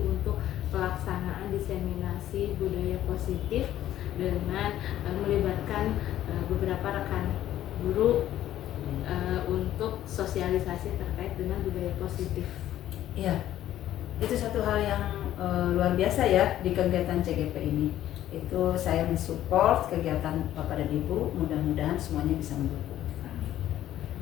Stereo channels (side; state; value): right; quieter; 12.7 dB